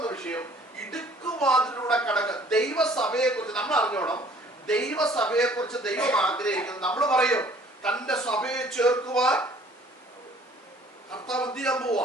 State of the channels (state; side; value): normal; both; correlation 0.55